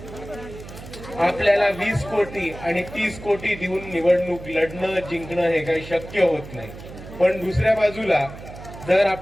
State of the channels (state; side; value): noise; right; hum, 14 dB below the sound